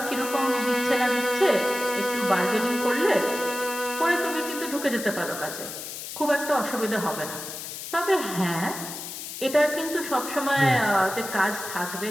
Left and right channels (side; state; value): left; noise; hiss, 9 dB below the sound